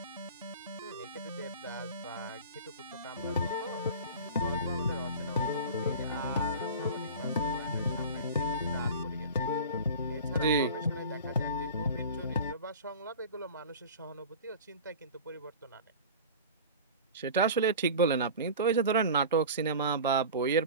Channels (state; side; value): inverted; both; correlation -0.35